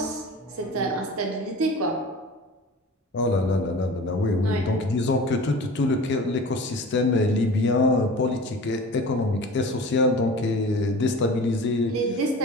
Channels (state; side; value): normal; both; correlation 0.38